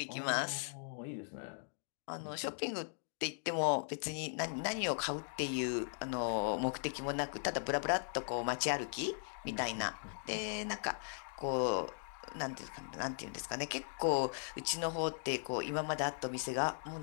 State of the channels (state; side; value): silent; right; digital silence